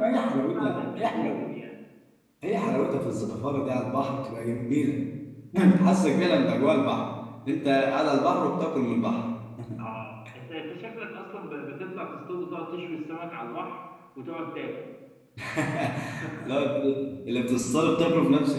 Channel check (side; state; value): both; identical; correlation 1.00